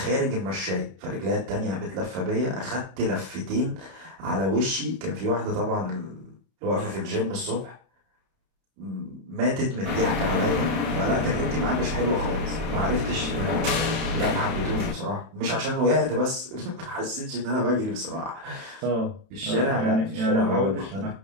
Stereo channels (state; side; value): late; left; 31 ms